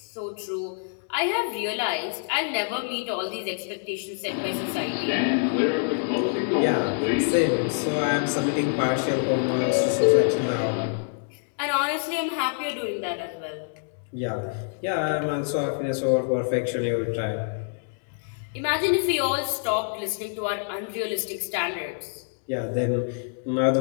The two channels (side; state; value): right; silent; digital silence